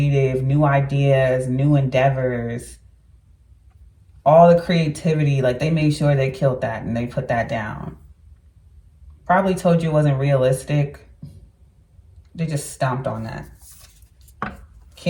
new ideas, new endeavors, all the creativity. Like, they made sure they killed that and they put that down. Probably told you it wasn't realistic. They just stomped on that.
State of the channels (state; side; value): identical; both; correlation 1.00